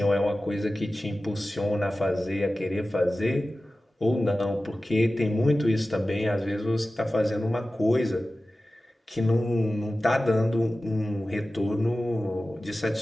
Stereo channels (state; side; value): normal; both; correlation 0.96